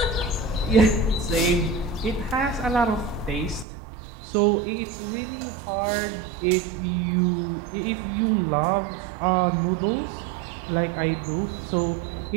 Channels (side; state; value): left; drops out; at 3.7 s